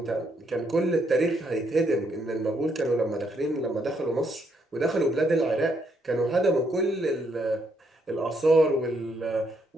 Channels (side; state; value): both; normal; correlation 0.74